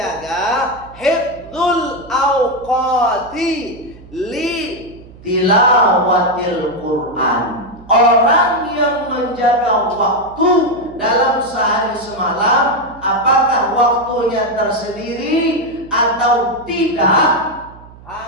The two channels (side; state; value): right; noise; hum, 21 dB below the sound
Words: hifdzul awqati li tilawatil Quran. Orang yang menjaga waktu dalam sehari semalam, apakah waktunya tersendiri atau tidak,